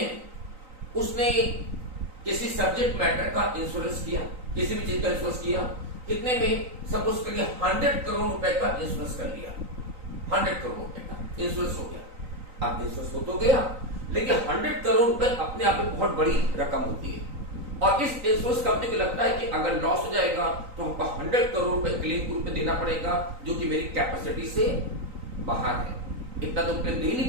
उसने किसी सब्जेक्ट मैटर का इंश्योरेंस किया, किसी भी चीज का इंश्योरेंस किया, कितने में? सपोज करिए 100 करोड़ रुपए का इंश्योरेंस कर लिया, 100 करोड़ रुपए का इंश्योरेंस हो गया। अब इंश्योरेंस हो गया, लेकिन 100 करोड़ रुपए अपने आप में बहुत बड़ी रकम होती है और इस इंश्योरेंस कंपनी को लगता है कि अगर लॉस हो जाएगा तो हमको 100 करोड़ रुपए क्लेम के रूप में देना पड़ेगा, जो कि मेरी कैपेसिटी से बाहर है, इतना तो क्लेम दे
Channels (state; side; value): late; left; 3.9 ms